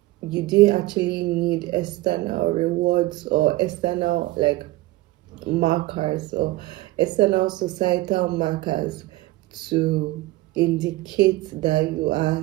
you didn't actually need external rewards or external like markers or external societal markers to indicate that you are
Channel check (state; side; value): quieter; left; 18.6 dB